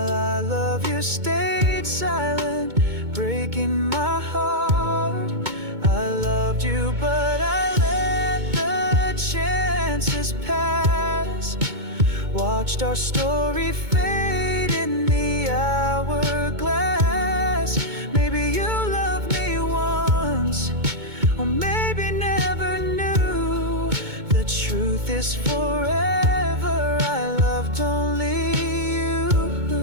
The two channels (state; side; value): late; left; 2.2 ms